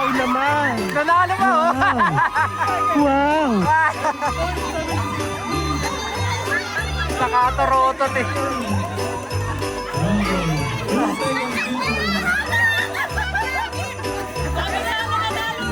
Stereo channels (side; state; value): both; identical; correlation 1.00